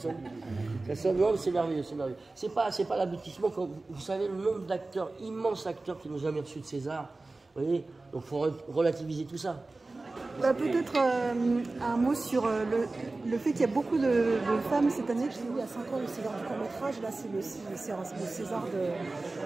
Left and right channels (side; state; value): left; quieter; 3.3 dB